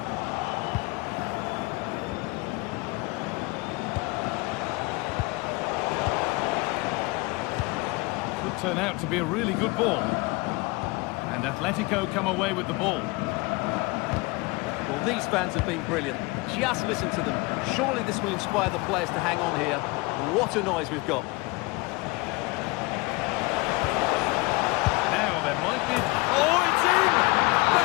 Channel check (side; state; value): right; quieter; 24.6 dB